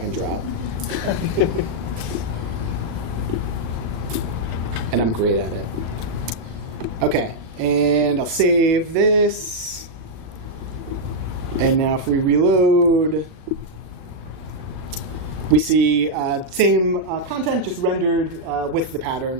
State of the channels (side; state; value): left; late; 37 ms